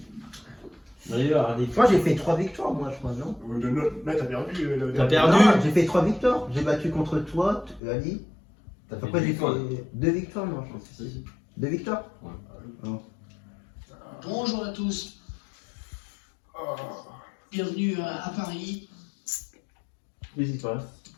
D'ailleurs, allez. Moi j'ai fait 3 victoires, moi je crois, non? Là, t'as perdu. T'as perdu. Non, j'ai fait 3 victoires. J'ai battu contre toi, Ali. Après j'ai fait 2 victoires, non, je pense. Si. 2 victoires? Ouais. Non. Bonjour à tous, bienvenue à Paris. Qu'est-ce qui se passe?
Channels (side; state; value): right; drops out; at 7.8 s